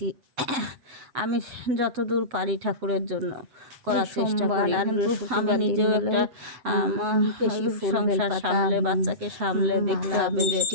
আমি যতদূর পারি ঠাকুরের জন্য করার চেষ্টা করি, কিন্তু আমি নিজেও একটা সংসার সামলে, বাচ্চাকে সামলে দেখতে হবে যে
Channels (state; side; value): late; left; 7.9 ms